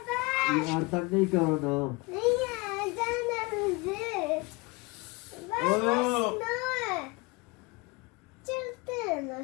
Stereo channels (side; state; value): right; quieter; 25.9 dB